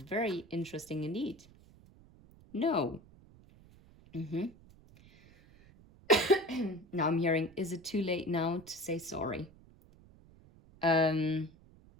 interesting indeed. No. Now I'm hearing, is it too late now to say sorry? Because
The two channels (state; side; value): noise; right; rumble, 25 dB below the sound